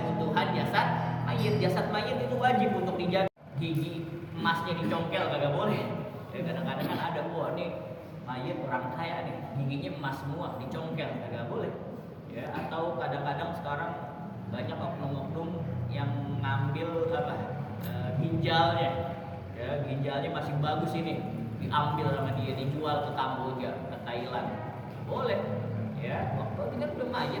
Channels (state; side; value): identical; both; correlation 1.00